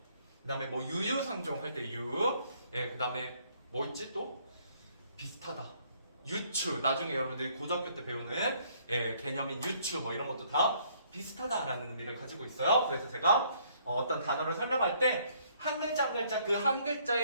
그 다음에 뭐 유유상종 할 때 유, 그 다음에 뭐 있지 또? 비슷하다. 유추, 나중에 여러분들이 고등학교 때 배우는 개념인 유추 뭐 이런 것도 다 비슷하다라는 의미를 가지고 있어요. 그래서 제가 어떤 단어를 설명할 때 한 글자 한 글자 그 한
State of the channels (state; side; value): inverted; both; correlation -0.65